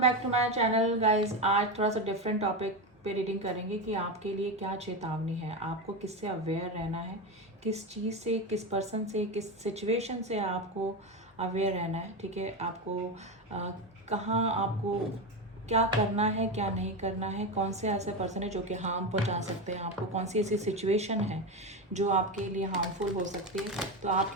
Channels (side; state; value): both; normal; correlation 0.16